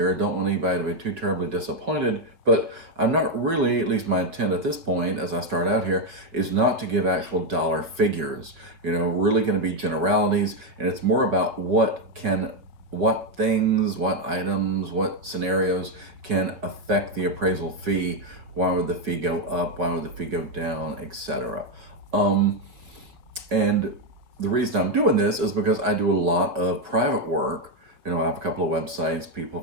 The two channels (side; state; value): left; late; 5.5 ms